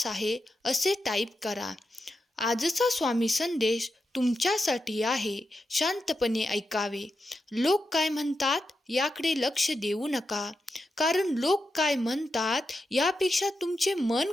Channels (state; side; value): normal; both; correlation 0.87